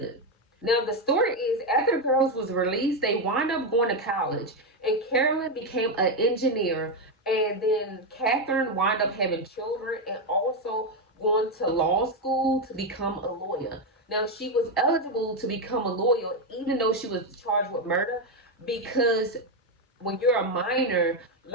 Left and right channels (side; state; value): both; normal; correlation 0.07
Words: Now the story is after the girls was released, they wound up going to college, and Carolyn became an engineer, and then Catherine wound up having children and also going to law school to become a lawyer. Now she was eligible to become a lawyer even though she was charged with murder because when you're a minor,